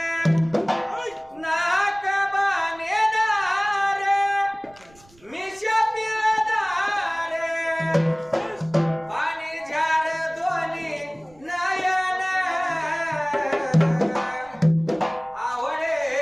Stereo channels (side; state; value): right; noise; rumble, 27 dB below the sound